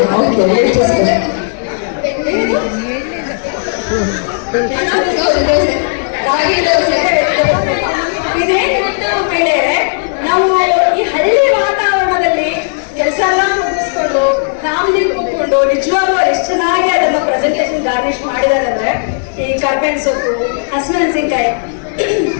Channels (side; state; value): right; silent; digital silence